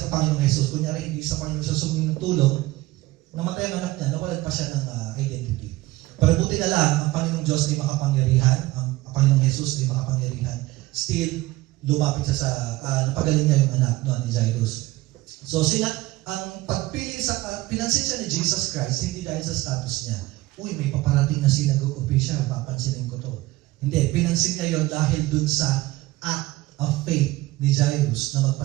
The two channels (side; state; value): left; quieter; 19.0 dB